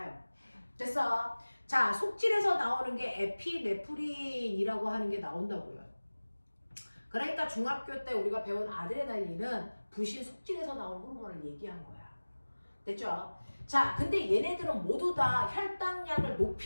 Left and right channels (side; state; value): both; inverted; correlation -1.00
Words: 됐어? 자, 속질에서 나오는 게 에피네프린이라고 하는 게 나온다고요. 그러니까 중학교 때 우리가 배운 아드레날린은 부신 속질에서 나온 호르몬을 얘기한 거야. 됐죠? 자, 근데 얘네들은 모두 다 혈당량을